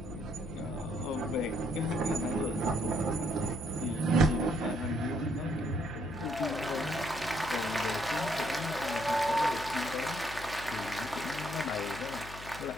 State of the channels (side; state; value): left; noise; hum, 13 dB below the sound